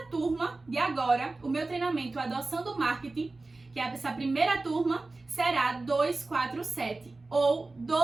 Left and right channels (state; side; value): quieter; left; 3.3 dB